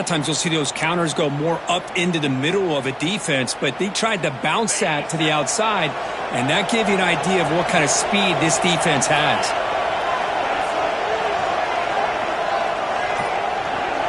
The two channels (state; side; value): identical; both; correlation 1.00